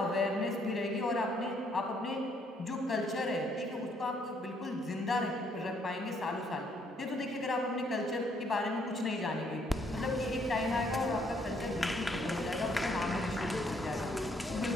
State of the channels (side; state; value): both; normal; correlation 0.68